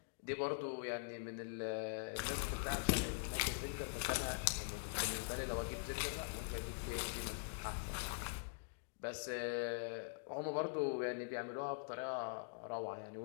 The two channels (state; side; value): silent; right; digital silence